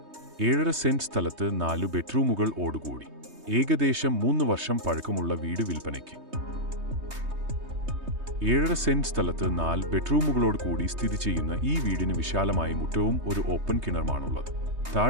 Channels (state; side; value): late; left; 3.2 ms